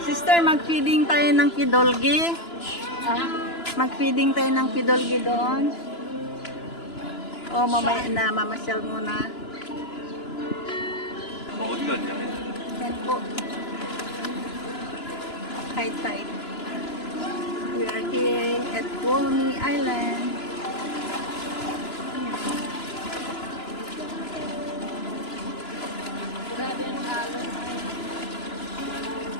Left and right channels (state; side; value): late; right; 2.9 ms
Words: Sister, mag-feeding tayo ng pidulgi. Mag-feeding tayo ng pidulgi doon. O, mamaya na, mamasyal muna. Yan po. High tide. We are here at Walney Island. Grabe ang alon.